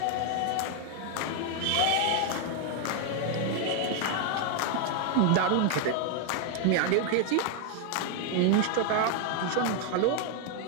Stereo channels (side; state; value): both; different; correlation 0.01